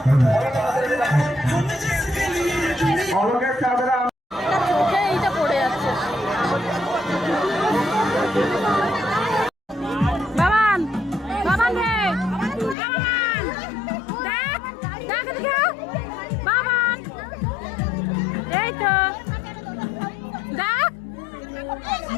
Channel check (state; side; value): drops out; right; at 12.8 s